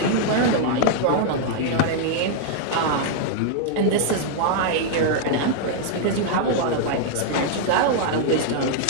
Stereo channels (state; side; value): different; both; correlation -0.01